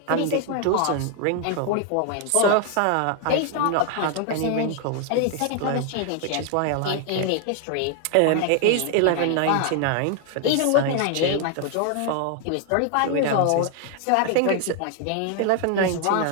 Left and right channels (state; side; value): different; both; correlation 0.00